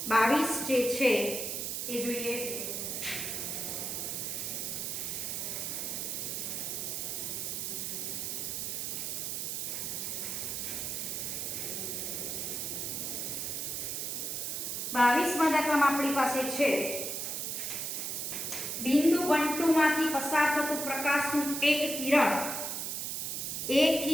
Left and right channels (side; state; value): right; noise; hiss, 3 dB below the sound